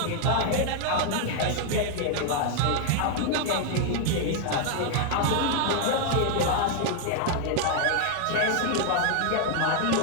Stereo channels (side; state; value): both; different; correlation 0.00